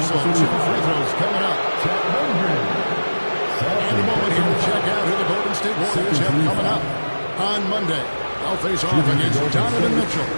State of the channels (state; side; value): inverted; both; correlation -1.00